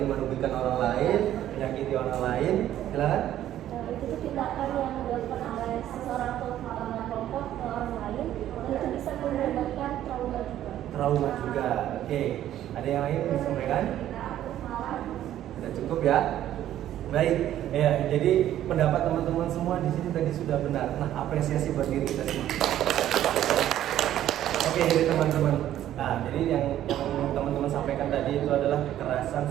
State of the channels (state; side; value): quieter; left; 12.2 dB